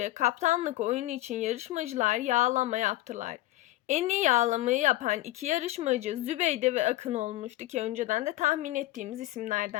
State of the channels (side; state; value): right; quieter; 16.4 dB